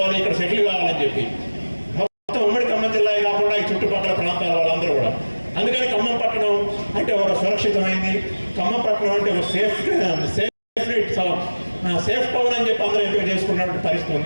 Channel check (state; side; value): inverted; both; correlation -1.00